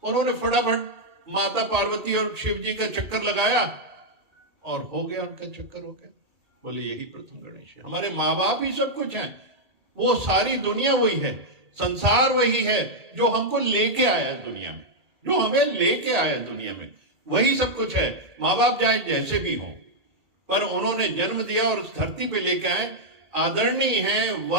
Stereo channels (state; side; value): late; left; 1.8 ms